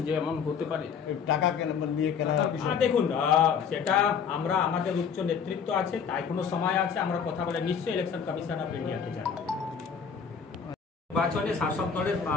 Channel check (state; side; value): quieter; right; 6.7 dB